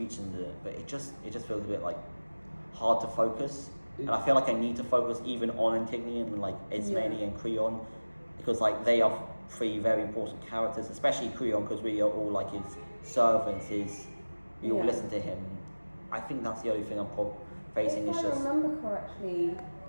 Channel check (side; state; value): both; inverted; correlation -1.00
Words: in it. But it just feels a bit like hard to focus. And I feel like I need to focus even on Antigone and like Ismene and Creon, because like they are 3 very important characters, especially Creon, because we are all like his servants. We all listen to him. I think that's the only thing I'm facing. If I remember correctly,